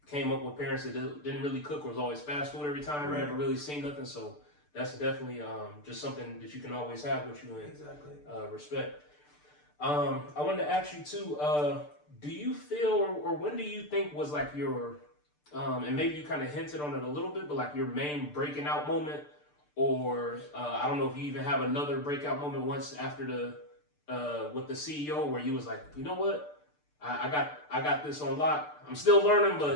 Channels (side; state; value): right; late; 6.8 ms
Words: came up with parents that didn't really cook or was always fast food every time. Never really seen nothing. So that's definitely just something that you can always have with you. And exactly. Respect. I wanted to ask you too, do you feel, or when do you think was like your, and maybe you kind of hinted on it a little bit, but like your main breaking out moment, or I don't know if you even have another breakout moment once after the, with the CEO where you was like, you know what, I got this on lock. I'm still learning,